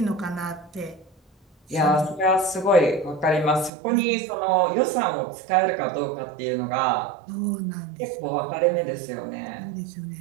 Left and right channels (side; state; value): left; drops out; at 3.7 s